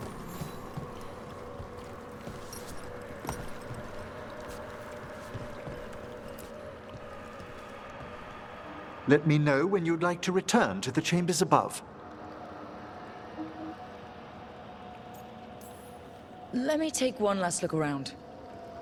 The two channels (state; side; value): identical; both; correlation 1.00